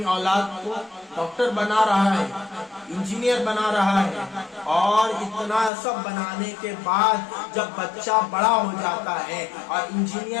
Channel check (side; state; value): right; drops out; at 5.7 s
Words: اولاد کو ڈاکٹر بنا رہا ہے، انجینئر بنا رہا ہے، اور اتنا سب بنانے کے بعد جب بچہ بڑا ہو جاتا ہے اور